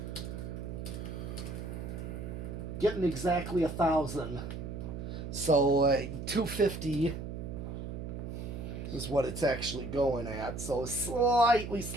Getting exactly 1,000. So 250 is what it's actually going at. So slightly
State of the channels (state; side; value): noise; right; hum, 7 dB below the sound